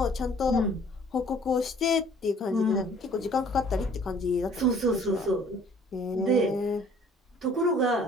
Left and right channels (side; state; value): both; normal; correlation 0.54